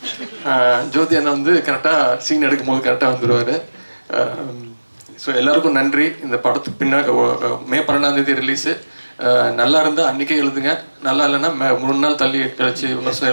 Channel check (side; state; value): both; inverted; correlation -1.00